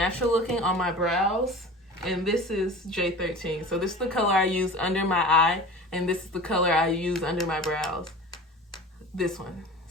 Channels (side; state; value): both; normal; correlation 0.37